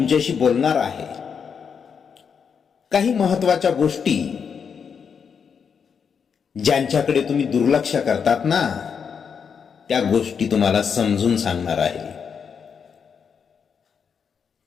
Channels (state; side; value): quieter; right; 6.6 dB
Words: बोलणार आहे काही महत्त्वाच्या गोष्टी ज्यांच्याकडे तुम्ही दुर्लक्ष करतात ना, त्या गोष्टी तुम्हाला समजून सांगणार आहे.